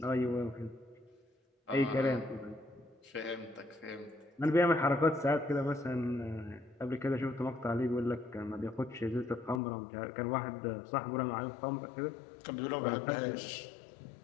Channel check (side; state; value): right; drops out; at 9.6 s